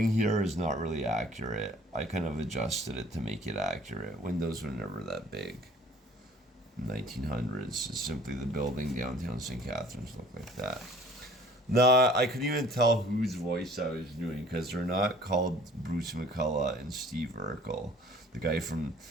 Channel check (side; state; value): both; normal; correlation 0.51